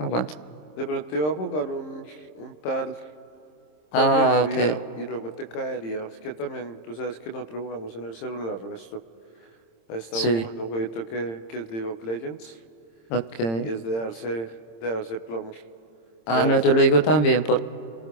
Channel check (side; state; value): right; late; 26 ms